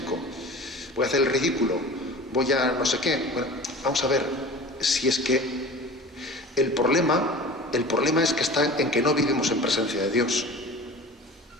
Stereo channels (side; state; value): both; normal; correlation 0.39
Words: voy a hacer el ridículo, voy a no sé qué. Bueno, vamos a ver, si es que el problema es que está en que no vivimos en presencia de Dios.